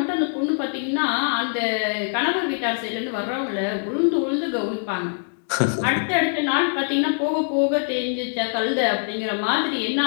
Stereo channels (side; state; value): right; silent; digital silence